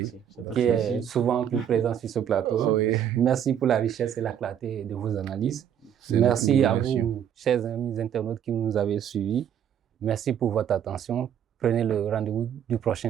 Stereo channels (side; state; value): left; quieter; 9.3 dB